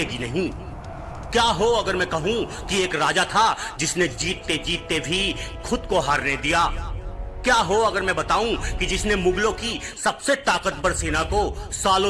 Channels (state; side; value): identical; both; correlation 1.00